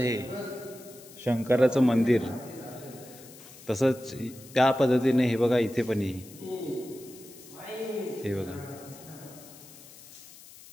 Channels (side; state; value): left; noise; hiss, 19 dB below the sound